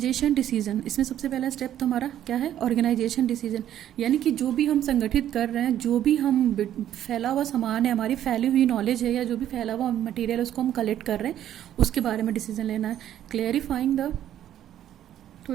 डिसीजन। इसमें सबसे पहला स्टेप तो हमारा क्या है, ऑर्गेनाइजेशन डिसीजन। यानी कि जो भी हम संगठित कर रहे हैं, जो भी हम फैला हुआ सामान है, हमारी फैली हुई नॉलेज है या जो भी फैला हुआ मटीरियल है उसको हम कलेक्ट कर रहे हैं, उसके बारे में डिसीजन लेना है। क्लेरिफाइंग द, तो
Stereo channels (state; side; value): quieter; left; 11.3 dB